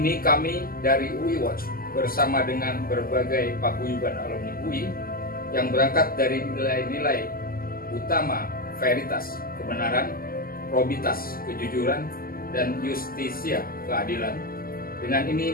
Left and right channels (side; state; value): right; late; 0.42 ms